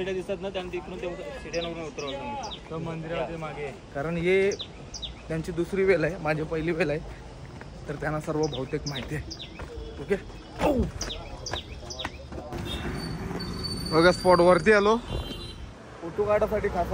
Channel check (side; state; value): both; identical; correlation 1.00